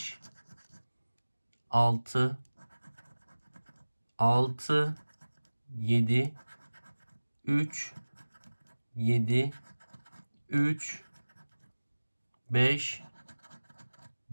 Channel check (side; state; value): both; inverted; correlation -1.00